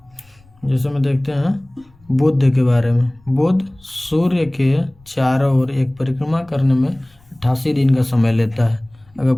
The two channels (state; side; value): noise; left; rumble, 29 dB below the sound